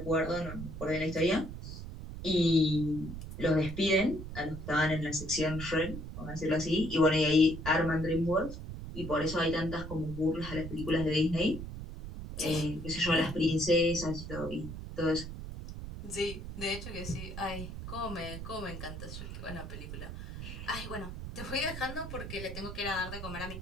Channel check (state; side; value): noise; right; rumble, 9 dB below the sound